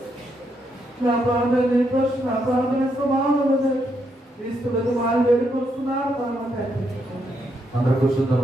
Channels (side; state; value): both; normal; correlation 0.78